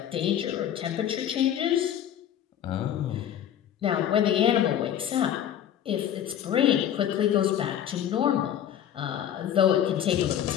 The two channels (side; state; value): right; quieter; 10.3 dB